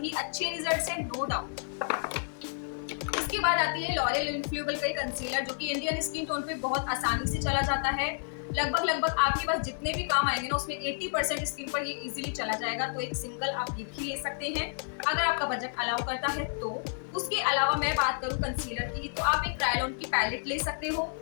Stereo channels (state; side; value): silent; right; digital silence